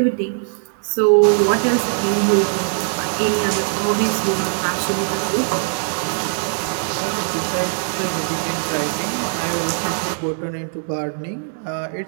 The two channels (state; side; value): silent; left; 65 dB below the other